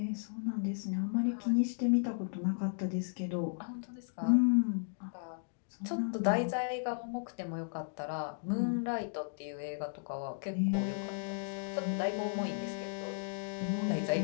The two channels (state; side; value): silent; right; digital silence